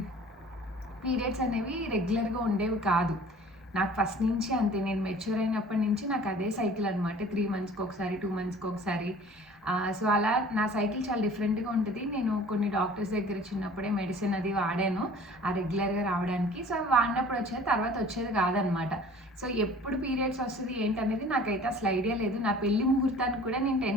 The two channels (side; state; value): both; normal; correlation 0.47